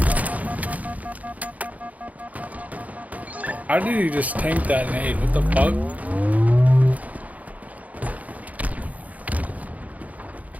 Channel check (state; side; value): late; left; 0.073 ms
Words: How did he just tank that nade? What the fuck?